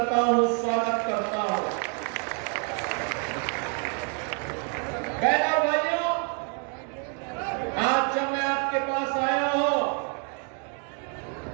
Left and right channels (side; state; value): left; quieter; 37.2 dB